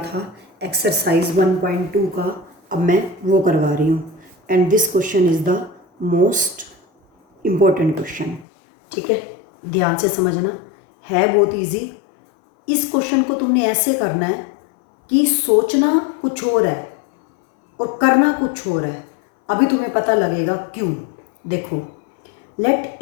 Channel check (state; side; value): drops out; right; at 8.5 s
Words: एक्सरसाइज 1.2 का, अब मैं वो करवा रही हूँ। And this question is the most important question. ठीक है, ध्यान से समझना, है बहुत इजी। इस क्वेश्चन को तुमने ऐसे करना है कि सोचना कुछ और है और करना कुछ और है। अभी तुम्हें पता लगेगा क्यों। देखो, let